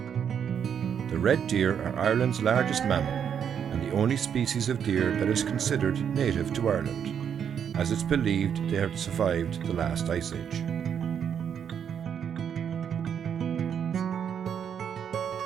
The red deer are Ireland's largest mammal, and the only species of deer that is considered native to Ireland, as it's believed they have survived the last ice age.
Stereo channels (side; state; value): left; quieter; 8.1 dB